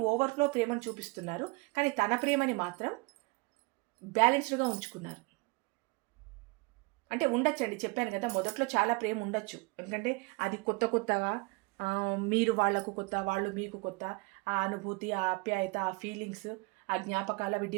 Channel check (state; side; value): quieter; left; 26.9 dB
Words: ఓవర్ఫ్లో ప్రేమను చూపిస్తున్నారు, కానీ తన ప్రేమని మాత్రం బ్యాలెన్స్డ్గా ఉంచుకున్నారు. అంటే ఉండొచ్చండి, చెప్పాను కదా, మొదట్లో చాలా ప్రేమ ఉండొచ్చు. ఎందుకంటే అది కొత్తగా మీరు వాళ్ళకు కొత్త, వాళ్ళు మీకు కొత్త. ఆ అనుభూతి, ఆ ఆప్యాయత, ఆ ఫీలింగ్స్, ఆ జ్ఞాపకాలు అవి